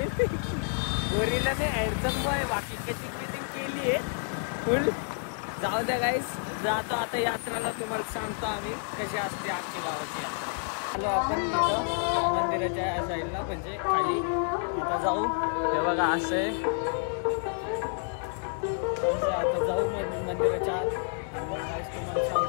गोरीला मी हँडसम बॉय बाकी कशी फिटिंग केली आहे फुल. जाऊ द्या गाईस, जातो आता यात्राला. तुम्हाला सांगतो आम्ही कशी असते आमच्या गावाची यात्रा. आलो आपण तिथं मंदिराच्या साईडला, म्हणजे खाली. आता जाऊ. हे बघा असं आहे. आता जाऊ मंदिराच्या आत आणि मग तुम्हाला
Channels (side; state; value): right; silent; 56 dB below the other